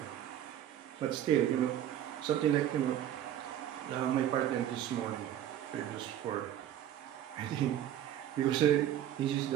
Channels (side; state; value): left; quieter; 11.3 dB